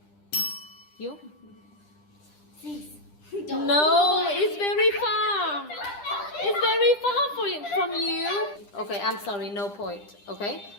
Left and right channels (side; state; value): right; late; 10 ms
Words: You? These. No, it's very far. It's very far from you. Okay, I'm sorry, no point. Okay,